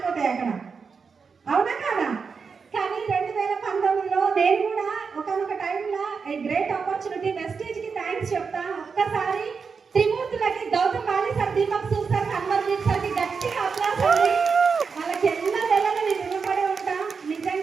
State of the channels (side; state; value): left; quieter; 5.4 dB